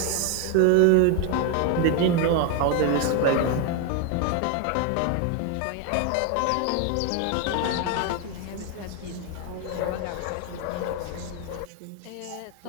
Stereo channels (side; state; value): both; different; correlation 0.01